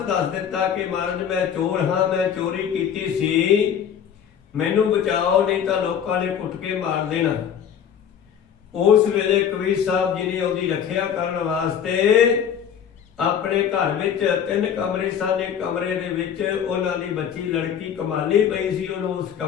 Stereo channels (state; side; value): quieter; right; 8.4 dB